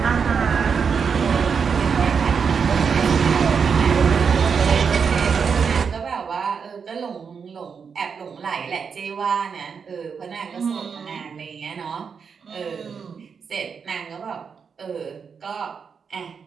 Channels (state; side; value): quieter; left; 6.2 dB